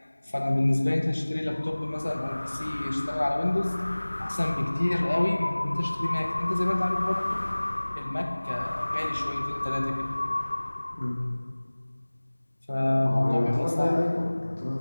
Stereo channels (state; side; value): inverted; both; correlation -1.00